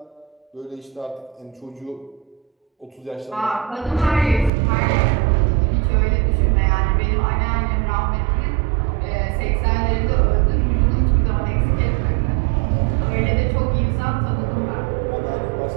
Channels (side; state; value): left; drops out; at 4.5 s